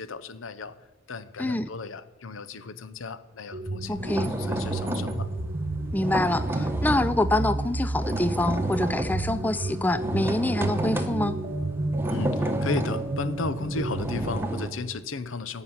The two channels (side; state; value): both; normal; correlation 0.75